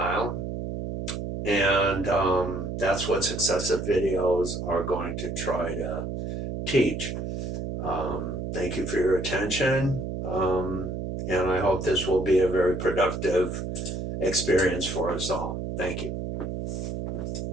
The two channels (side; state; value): right; noise; hum, 5 dB below the sound